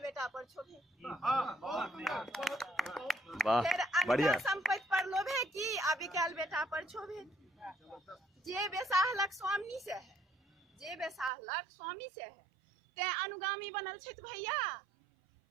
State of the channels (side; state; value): left; drops out; at 11.3 s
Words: पर छोभे। फिर अनका संपत्ति पर लोभे की, अभी काल बेटा पर छोभे की। जे बेसाहलक स्वामी से है, जे बेसाहलक स्वामी से है। ते अनुगामी बनल छथि भैया,